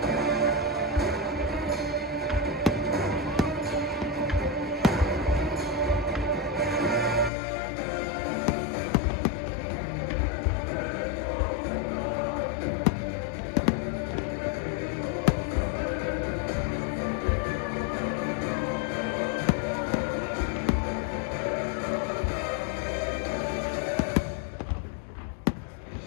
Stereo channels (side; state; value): right; drops out; at 7.3 s